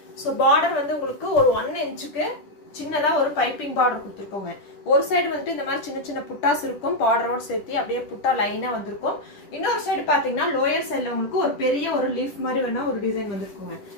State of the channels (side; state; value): right; late; 10 ms